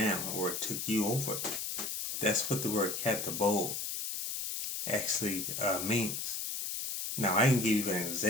or took you over. That's what the word katabole actually means. Now, I can give you an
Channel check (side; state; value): left; noise; hiss, 3 dB below the sound